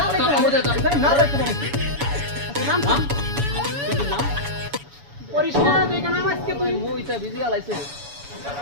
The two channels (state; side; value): late; left; 7.1 ms